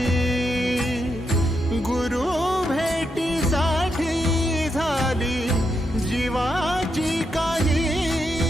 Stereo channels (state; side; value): normal; both; correlation 0.83